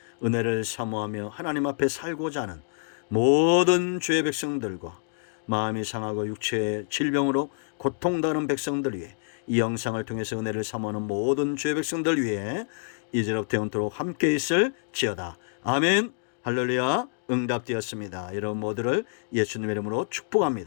은혜를 사모하며 하나님 앞에 살고자 하는 모든 주의 백성들과 마음이 상하고 육체의 질병으로 고통당하는 백성들 위해, 이 영상을 통해서 은혜를 사모하는 모든 주의 백성들 위해 이제로부터 영원토록 함께 있을지어다. 아멘. 할렐루야. 응답되었습니다. 여러분 모두를 예수님의 이름으로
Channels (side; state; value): right; silent; digital silence